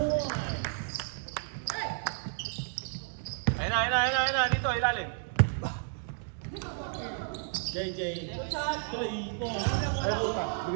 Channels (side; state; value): left; silent; digital silence